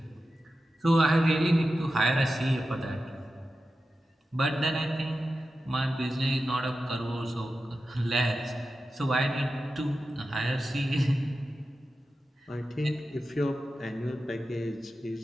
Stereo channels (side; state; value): both; normal; correlation 0.92